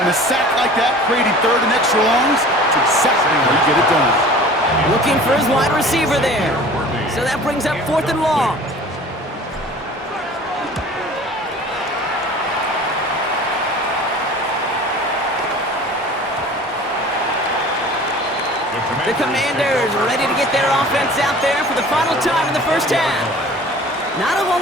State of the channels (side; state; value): both; normal; correlation 0.44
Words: a sack like that, creating 3rd and extra longs, it's exactly how you get it done. Looking for his wide receiver there. So that brings up 4th and long. The Commanders ready to get their offense out there for the final time in the 1st half. Not a whole